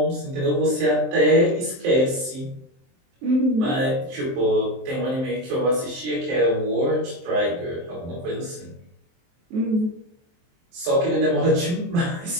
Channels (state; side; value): late; left; 23 ms